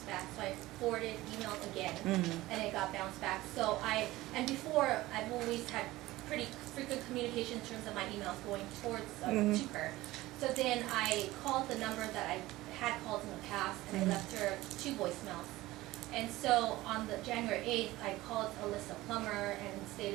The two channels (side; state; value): left; quieter; 17.9 dB